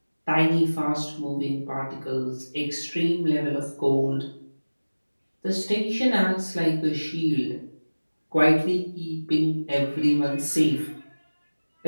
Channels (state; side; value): inverted; both; correlation -1.00